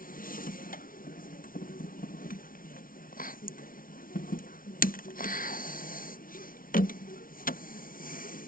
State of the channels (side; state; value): right; late; 0.41 ms